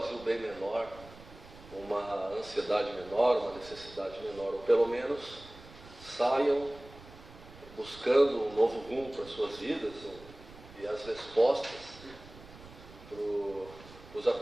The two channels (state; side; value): noise; right; rumble, 19 dB below the sound